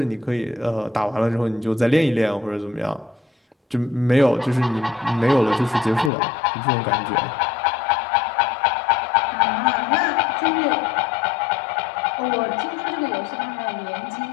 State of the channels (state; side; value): drops out; right; at 6.1 s